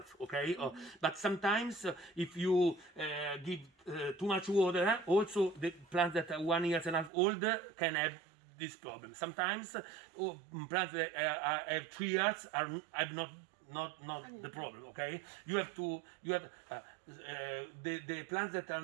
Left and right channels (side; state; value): left; drops out; at 7.1 s